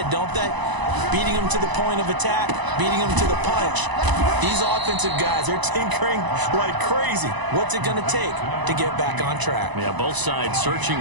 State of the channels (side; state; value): left; late; 1.0 ms